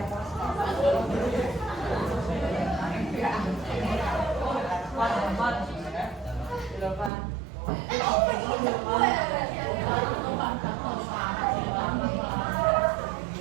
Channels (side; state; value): left; drops out; at 7.1 s